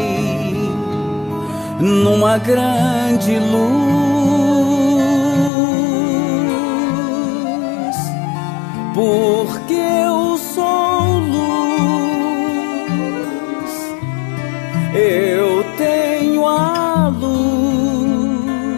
numa grande luz, porque eu sou luz, eu tenho a luz,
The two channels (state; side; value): drops out; right; at 5.5 s